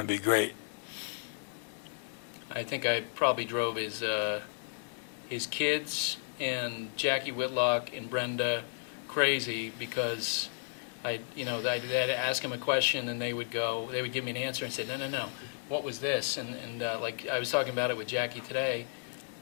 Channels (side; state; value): right; silent; digital silence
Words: to be great. I think I probably drove his kids and Jackie Whitlock and Brenda crazy because I'd ask them a question and they would give me an answer and say, no, what was this? And like I was talking about it with Jackie today,